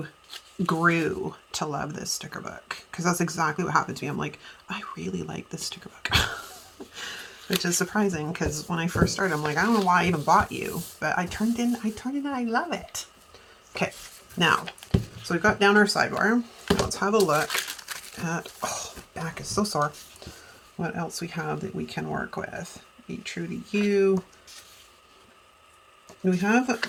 grew to love this sticker book? Because that's exactly what happened to me. I'm like, I really like this sticker book. Which is surprising, because when I first started, I'm like, I don't know why I even bought you, but I turned in and I love it. Okay, now, so we've got down our sidebar. Let's have a look at, oh, back is so sore. What else we have that we can work with? Be true to you. We have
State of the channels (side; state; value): both; identical; correlation 1.00